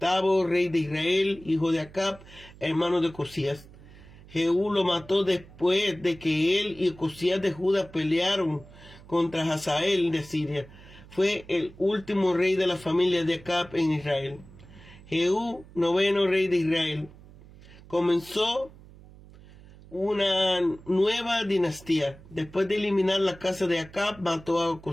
rey de Israel, hijo de Acab, hermano de Ocosías. Jehú lo mató después de que él y Ocosías de Judá pelearon contra Hazael de Siria. Fue el último rey de la familia de Acab en Israel. Jehú, noveno rey de Israel, comenzó una nueva dinastía. Después de eliminar la casa de Acab, mató a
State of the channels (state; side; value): noise; right; hum, 21 dB below the sound